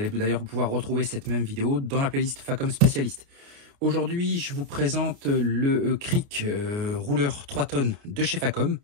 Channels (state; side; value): late; left; 29 ms